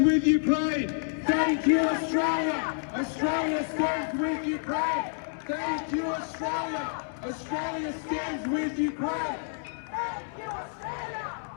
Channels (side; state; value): right; silent; 59 dB below the other